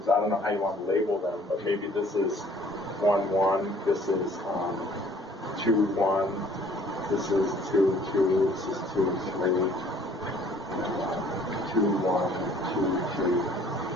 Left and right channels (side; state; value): both; normal; correlation 0.56